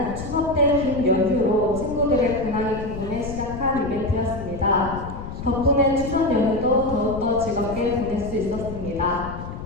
추석 때 긴 연휴로 친구들의 근황이 궁금해 시작한 이벤트였습니다. 덕분에 추석 연휴도 더욱더 즐겁게 보낼 수 있었습니다.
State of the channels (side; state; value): left; noise; rumble, 9 dB below the sound